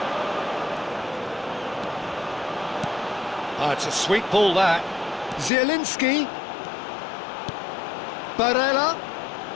It's a sweet ball, that. Zielinski. Barella.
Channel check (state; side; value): drops out; right; at 5.5 s